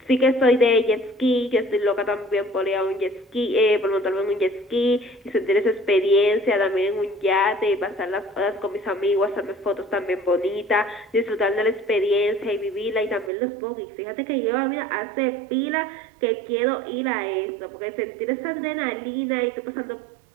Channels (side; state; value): left; drops out; at 13.3 s